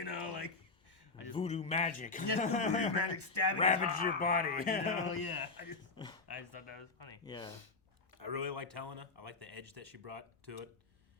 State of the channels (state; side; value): quieter; right; 3.9 dB